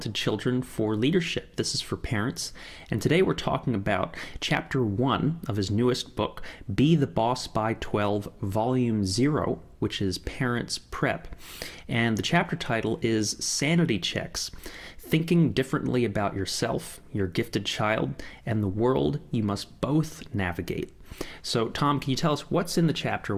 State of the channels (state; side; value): identical; both; correlation 1.00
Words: children for leadership. This is for parents. And today we're talking about Chapter 1 of his newest book, Be the Boss by 12, Volume 0, which is Parents Prep. And the chapter title is Sanity Checks. Thinking differently about yourself, your gifted child, and the world you must both navigate. So, Tom, can you tell us what's in the chapter?